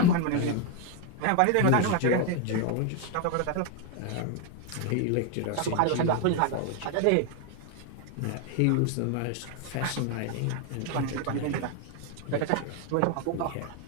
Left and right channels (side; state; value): both; different; correlation 0.01